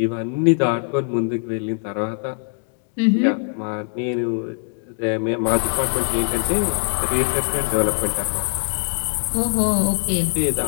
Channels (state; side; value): silent; right; 60 dB below the other